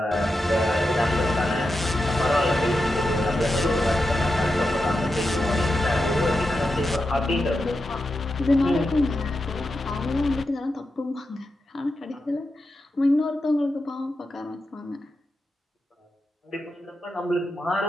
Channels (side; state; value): both; normal; correlation 0.89